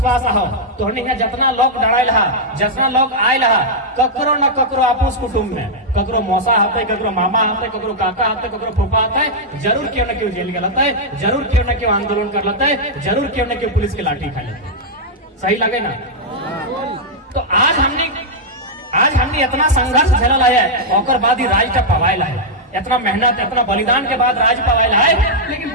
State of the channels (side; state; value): both; normal; correlation -0.06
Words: हो तो हमने जितना लोग डराइल हा जितना लोग आयल हा ककरो न ककरो आपस कुटुंब में ककरो मौसा हते ककरो मामा हते ककरो काका हते ककरो फूफा हते जरूर क्यों न क्यों जेल गए हते जरूर क्यों न क्यों आंदोलन कर लेते जरूर क्यों न क्यों पुलिस की लाठी खा लेते सही लगे ना तो आज हमने इतना संघर्ष झेलल है और बाद ही राज का पवाइल है इतना मेहनत इतना बलिदान के बाद राज पवाइल है